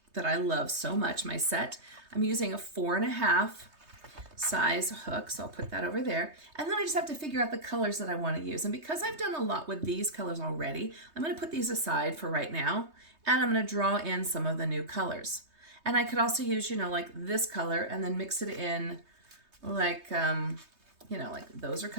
that I love so much, my set. I'm using a 4.5 size hook, so I'll put that over there. And then I just have to figure out the colors that I want to use. And because I've done a lot with these colors already, I'm going to put these aside for right now, and I'm going to draw in some of the new colors. And I could also use, you know, like this color and then mix it in like, you know, like those are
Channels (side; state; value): left; late; 3.2 ms